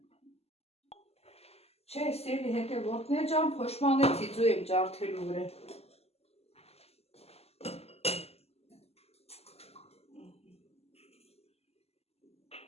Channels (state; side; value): late; right; 0.29 ms